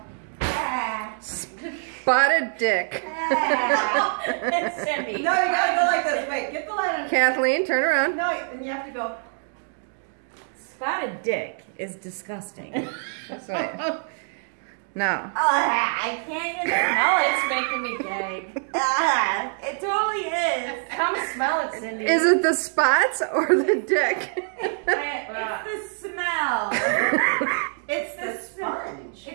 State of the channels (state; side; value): silent; left; 62 dB below the other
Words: dick. It's Cindy. No, you gotta go like this. Wait, get the light on. Kathleen, turn around. No, and you have to go. Spotted dick is disgusting. That's right. No. I can't even smell it. It's making me gag. It totally is. Come smell it, Cindy. Is it the spots or the dick? It's the smell. It's the sponge.